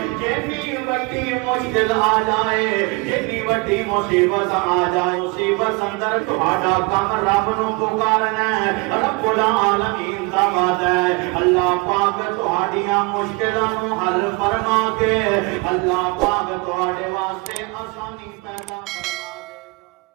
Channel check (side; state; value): left; quieter; 28.0 dB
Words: جتنی بڑی مشکل آ جائے، جتنی بڑی مصیبت آ جائے، مصیبت اندر تہاڈا کم رب نو پکارنا ہے، رب العالمین دا وعدہ ہے اللہ پاک تہاڈیاں مشکلاں نو حل فرما کے اللہ پاک تہاڈے واسطے